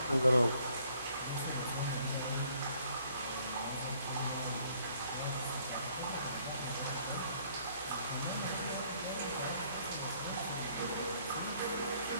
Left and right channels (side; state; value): both; inverted; correlation -0.64